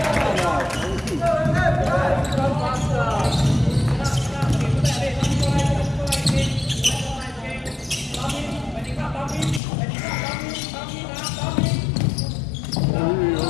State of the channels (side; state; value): right; drops out; at 9.6 s